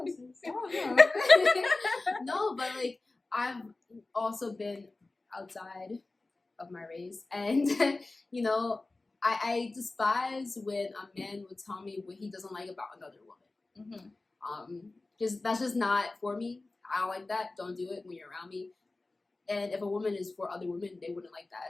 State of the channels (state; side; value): quieter; right; 3.2 dB